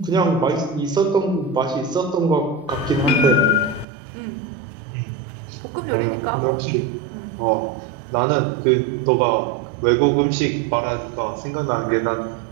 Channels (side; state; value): left; drops out; at 3.9 s